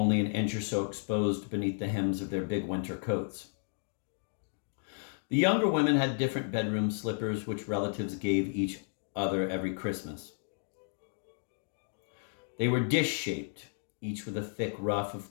an inch or so exposed beneath the hems of their big winter coats. The younger women had different bedroom slippers, which relatives gave each other every Christmas. They were dish-shaped, each with a thick ruff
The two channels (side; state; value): right; silent; digital silence